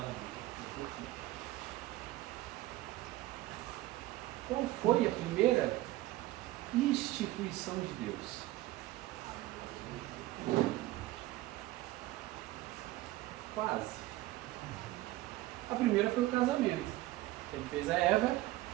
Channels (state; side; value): quieter; left; 17.3 dB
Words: Qual foi a primeira instituição de Deus? Quase. A primeira foi o casamento. Ele fez a Eva